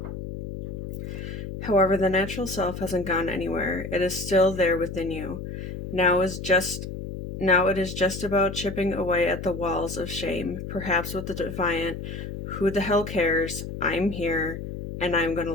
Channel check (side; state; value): left; noise; hum, 7 dB below the sound